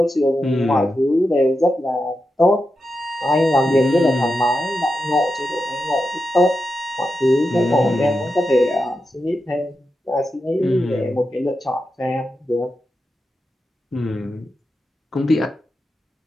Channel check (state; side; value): normal; both; correlation 0.89